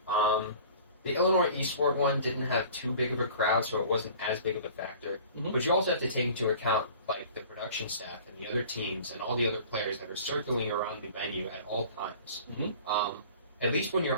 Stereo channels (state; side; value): inverted; both; correlation -0.45